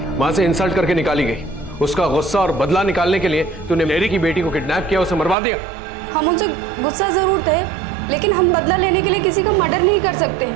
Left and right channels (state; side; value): drops out; left; at 5.4 s